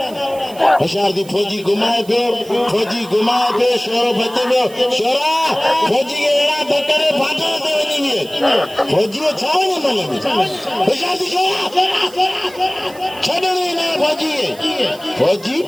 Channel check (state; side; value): noise; right; hiss, 21 dB below the sound